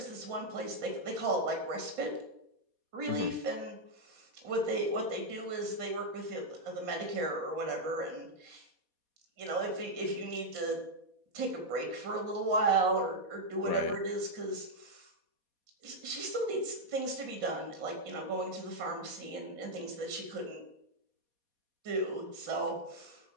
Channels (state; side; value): late; left; 4.2 ms